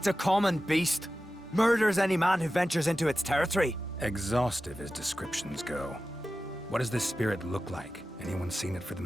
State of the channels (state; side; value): normal; both; correlation 0.94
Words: a common beast. Murders any man who ventures into its territory. Exhaustive as descriptions go. What does this spirit look like? Anyone seen it for